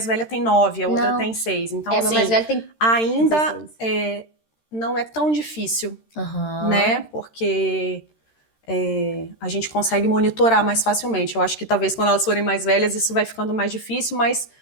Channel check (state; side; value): late; right; 13 ms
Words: velha tem 9, a outra Não. tem 6. Então, meu assim, mais velho tem ainda 16. Não é tão difícil, né? Porque a gente consegue monitorar mais facilmente. Eu acho que talvez quando elas forem mais velhas isso vai ficando mais difícil, mas